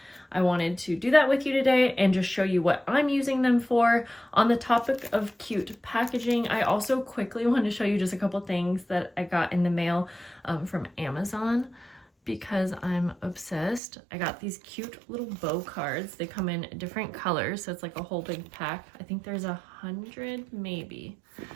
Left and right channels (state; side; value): drops out; left; at 13.8 s